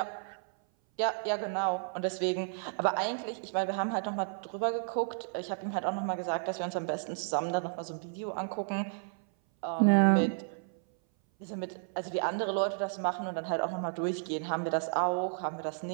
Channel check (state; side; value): silent; left; 56 dB below the other